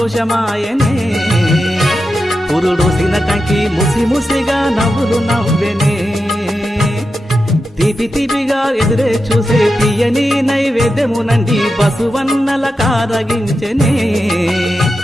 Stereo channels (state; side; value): normal; both; correlation 0.90